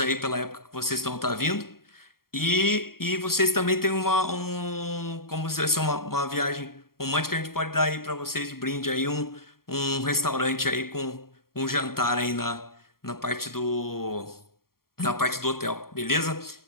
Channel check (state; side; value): late; right; 0.93 ms